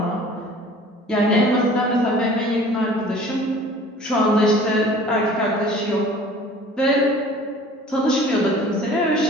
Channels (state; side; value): normal; both; correlation 0.47